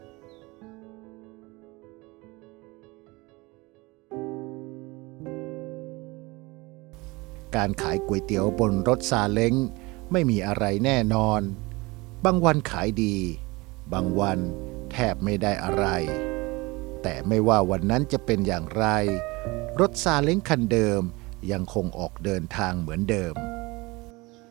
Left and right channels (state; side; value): quieter; left; 23.8 dB